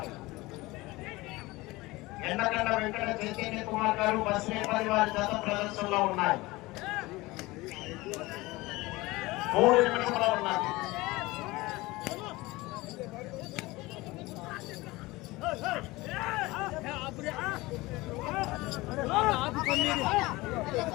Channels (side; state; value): right; quieter; 20.8 dB